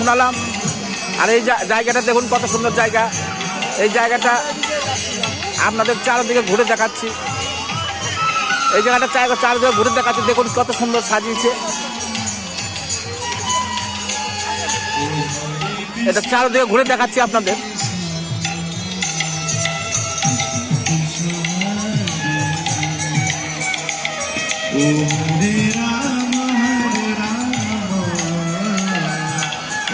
আর এই জায়গাটা দেখুন কত সুন্দর জায়গা। এই জায়গাটা আপনাদের চারিদিকে ঘুরে দেখাচ্ছি। এই জায়গাটা চারিদিকে ঘুরে দেখাচ্ছি, দেখুন কত সুন্দর সাজিয়েছে। এটা চারিদিকে ঘুরে দেখাচ্ছি আপনাদের।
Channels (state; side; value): identical; both; correlation 1.00